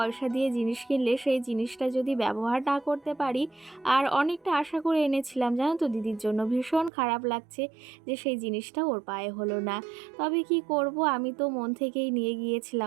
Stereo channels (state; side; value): drops out; left; at 6.9 s